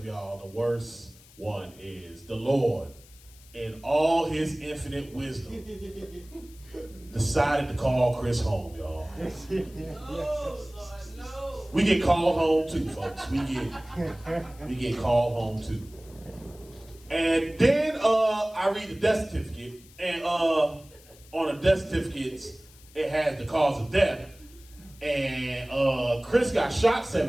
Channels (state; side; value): noise; left; hiss, 24 dB below the sound